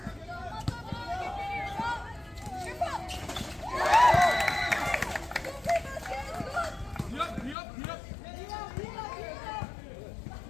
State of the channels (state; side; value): drops out; right; at 7.6 s